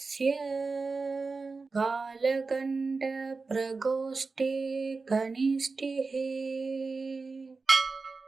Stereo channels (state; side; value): quieter; left; 4.1 dB